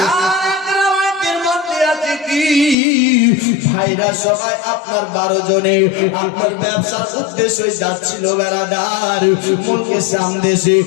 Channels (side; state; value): right; drops out; at 2.8 s